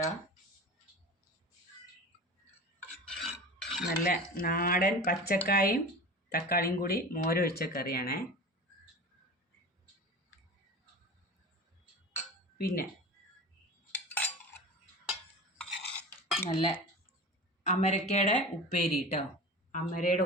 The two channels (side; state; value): both; normal; correlation 0.33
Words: നല്ല നാടൻ പച്ചക്കായും തക്കാളിയും കൂടി മോരൊഴിച്ച കറിയാണേ. പിന്നെ നല്ല അമരക്കയുടെ ഉപ്പേരി കേട്ടോ, അമരയുടെ